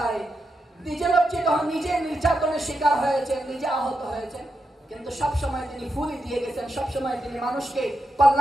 নিজে লজ্জিত হন, নিজে নির্যাতনের শিকার হয়েছেন, নিজে আহত হয়েছেন, কিন্তু সব সময় তিনি ফুলি দিয়ে গেছেন, সব সময় তিনি মানুষকে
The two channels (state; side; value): normal; both; correlation 0.86